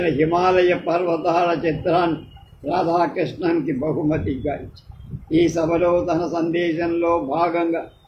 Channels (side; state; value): both; identical; correlation 1.00